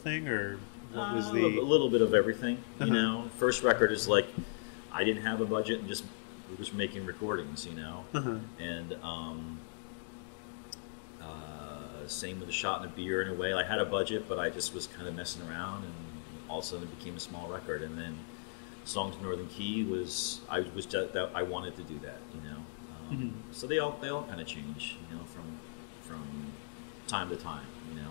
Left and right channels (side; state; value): right; silent; digital silence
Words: or what was a little bit of everything? You know, first record is like I didn't have a budget and just was making recordings, and same with the Shot in a Beer in a way. I had a budget, but I just was kind of messing around, and all of a sudden it became a small record. And then Songs in Northern Key I wanted to do that, So they all kind of change, from time to time,